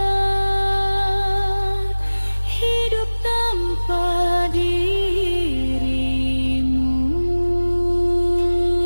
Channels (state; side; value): inverted; both; correlation -1.00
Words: hidup tanpa dirimu.